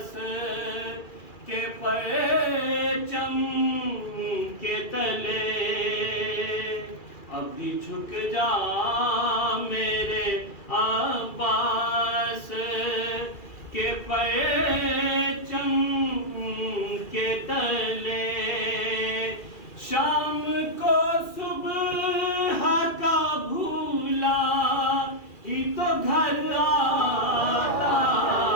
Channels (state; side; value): late; right; 2.4 ms